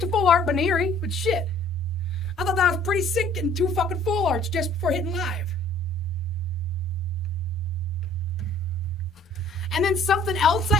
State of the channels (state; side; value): normal; both; correlation 0.56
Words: a full art Baneri, but shit. I thought that was pretty sick getting 2 fucking full arts just before hitting live. And then something else I